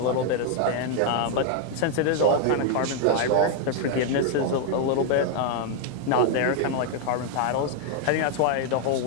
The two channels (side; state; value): both; different; correlation 0.00